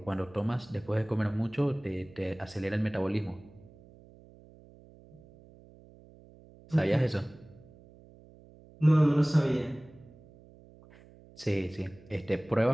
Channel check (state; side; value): noise; right; hum, 23 dB below the sound